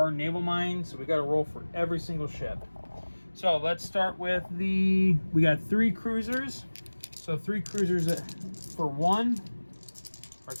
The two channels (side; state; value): both; inverted; correlation -1.00